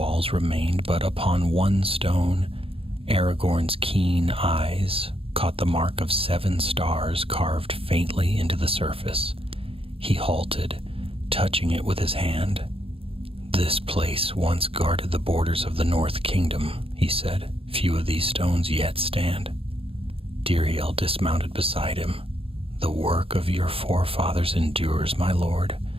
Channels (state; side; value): late; left; 0.27 ms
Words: remained, but upon one stone, Aragorn's keen eyes caught the mark of 7 stars carved faintly into the surface. He halted, touching it with his hand. "This place once guarded the borders of the North Kingdom," he said. "Few of these stones yet stand." Diriel dismounted beside him. "The work of your forefathers endures, my lord,